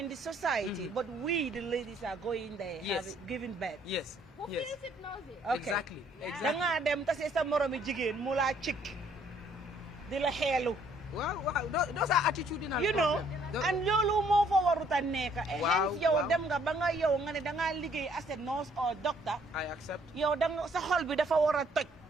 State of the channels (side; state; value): both; normal; correlation 0.64